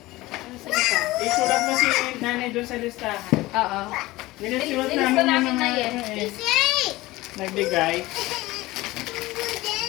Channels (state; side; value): quieter; right; 19.1 dB